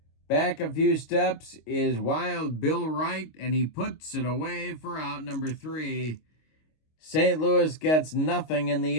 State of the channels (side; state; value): right; late; 25 ms